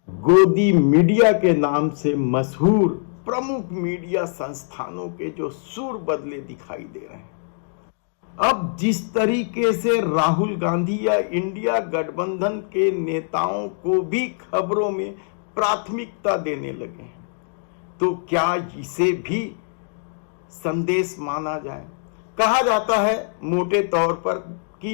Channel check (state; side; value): silent; right; digital silence